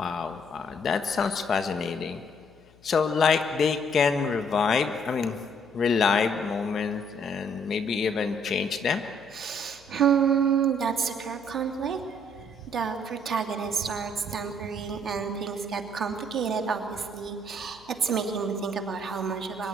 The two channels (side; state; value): left; noise; hum, 27 dB below the sound